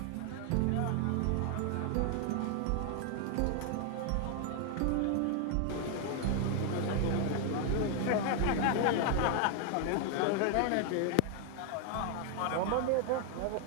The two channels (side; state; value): both; different; correlation 0.00